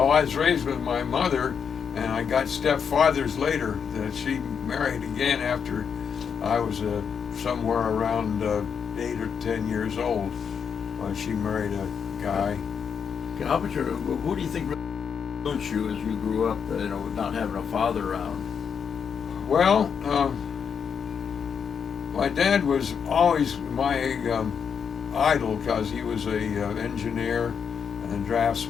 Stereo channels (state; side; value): quieter; right; 6.9 dB